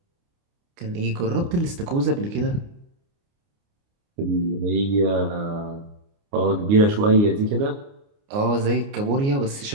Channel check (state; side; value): late; left; 29 ms